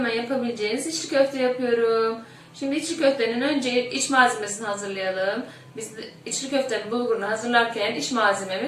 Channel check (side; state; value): both; identical; correlation 1.00